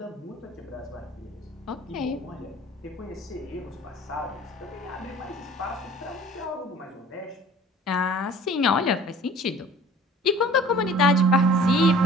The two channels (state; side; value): normal; both; correlation 0.48